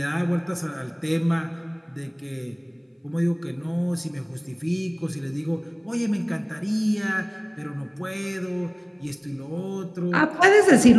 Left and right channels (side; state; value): both; identical; correlation 1.00